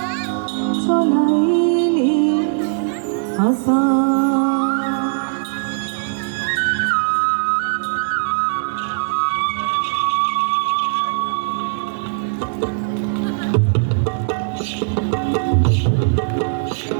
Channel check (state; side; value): silent; left; 65 dB below the other